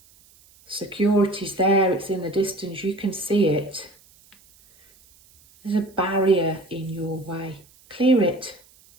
Security's there. It's in the distance. You can see it. There's a barrier in your way. Clear it.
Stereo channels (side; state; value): right; noise; hiss, 29 dB below the sound